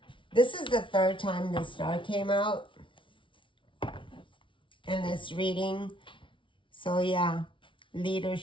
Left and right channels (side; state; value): right; late; 0.25 ms